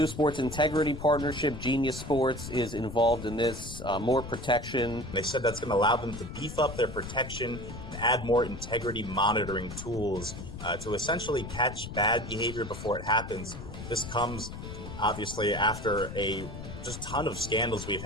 sports integrity partnership, Genius Sports, is involved in this. More protection. They said that's going to allow them to beef up their protection and add more integrity monitoring tools to essentially catch bad behavior before it happens. This comes, obviously, after a just ton of scandals we've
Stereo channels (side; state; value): left; noise; rumble, 10 dB below the sound